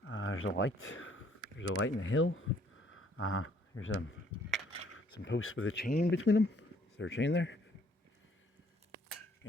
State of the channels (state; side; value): normal; both; correlation 0.63